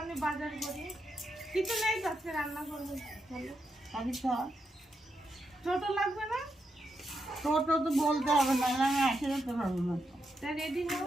বাজার করি। কিছু নেই তো আজকে রান্না করবো। চলো আমি তো ছোট লাগবে না? টোটো তো বলতে হবে না, আমি আসে যেতে পারবো না। তা রেডি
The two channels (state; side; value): normal; both; correlation 0.84